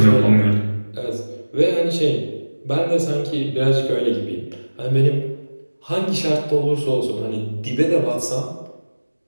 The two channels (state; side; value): inverted; both; correlation -1.00